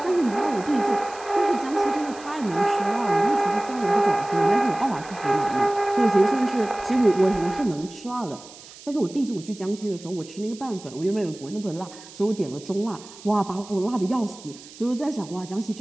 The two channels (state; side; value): noise; right; hiss, 19 dB below the sound